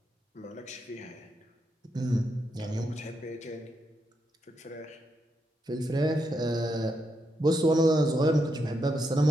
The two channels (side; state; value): both; normal; correlation 0.82